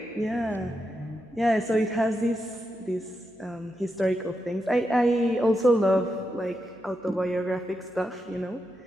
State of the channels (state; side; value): noise; right; hum, 30 dB below the sound